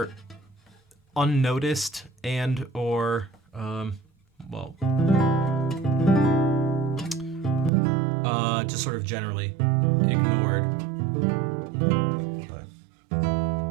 unnoticed and or just sort of generally ignored.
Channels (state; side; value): drops out; left; at 7.7 s